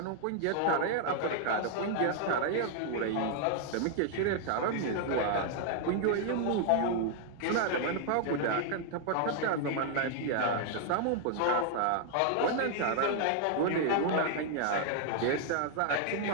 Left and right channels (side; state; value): both; different; correlation 0.00